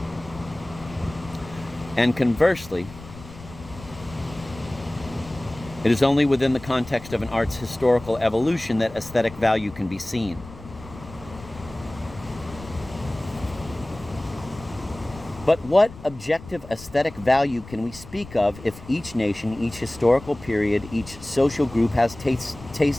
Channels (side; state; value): left; noise; rumble, 17 dB below the sound